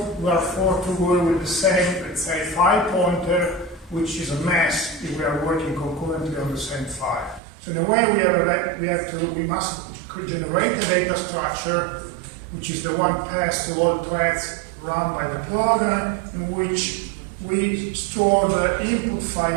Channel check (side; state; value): left; drops out; at 7.4 s